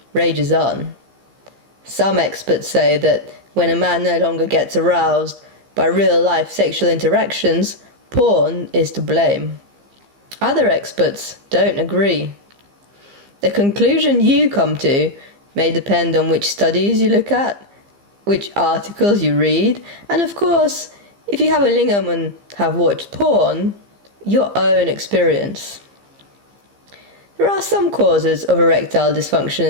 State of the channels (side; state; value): left; late; 15 ms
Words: rages on. Some experts say that when a man no longer gets aroused by real-life sexual interactions, porn is to blame. Other experts don't agree. The conclusion you come to may depend on which studies you look at, which articles you read, and of course, if you have a lingam and have watched porn, your own experience. There are some causes of erectile dysfunction